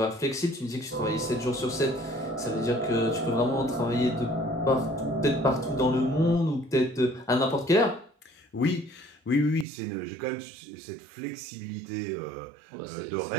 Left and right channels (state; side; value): drops out; left; at 9.7 s